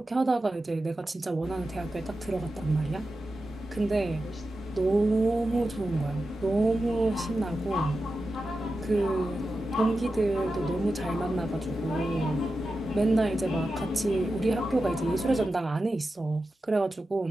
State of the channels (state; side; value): normal; both; correlation 0.92